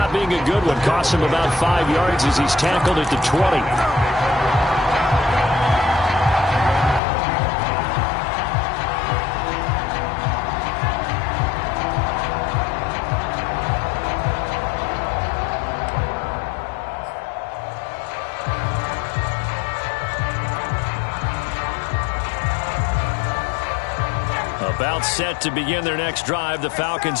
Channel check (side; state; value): right; drops out; at 7.0 s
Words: being a good one. Costs him about 5 yards as he's tackled at the 20. About set to begin their next drive, the